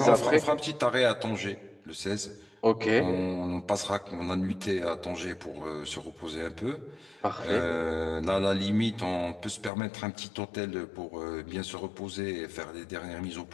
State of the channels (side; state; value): right; drops out; at 9.7 s